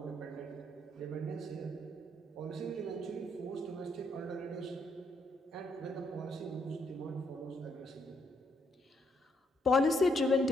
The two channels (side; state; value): both; normal; correlation 0.74